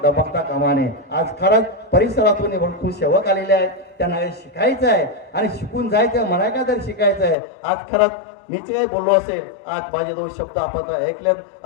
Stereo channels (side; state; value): right; drops out; at 7.4 s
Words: दबकता कामाने. आज खरंच परिसरातून भरपूर सेवक आलेले आहेत, त्यांना हे शिकायचं आहे आणि शिकून जायचं. मला काय तर शिकायचं आहे. आज खरंच मी जे काही बोललो असेल, आज माझे 2 शब्द आपण ऐकलेत.